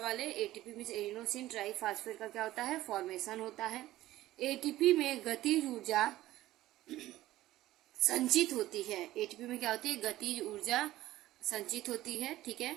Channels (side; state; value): left; quieter; 15.6 dB